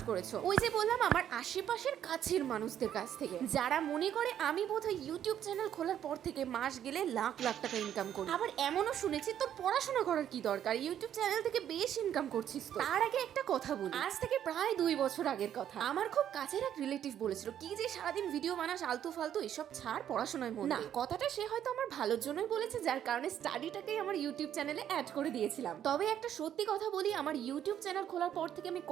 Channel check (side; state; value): left; quieter; 10.2 dB